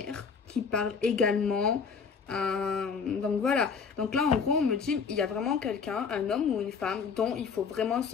qui parle également. Donc voilà. Donc là, en gros, on me dit, il y a vraiment quelqu'un, un homme ou une femme, dont il faut vraiment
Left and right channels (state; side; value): quieter; right; 5.8 dB